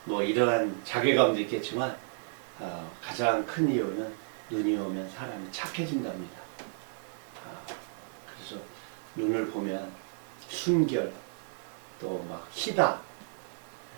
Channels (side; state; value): left; silent; digital silence